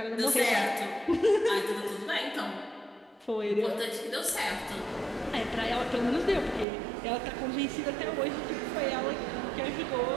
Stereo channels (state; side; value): drops out; left; at 6.7 s